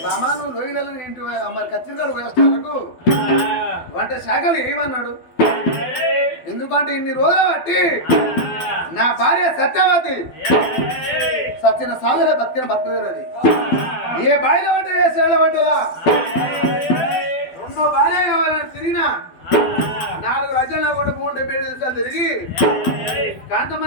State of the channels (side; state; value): right; late; 12 ms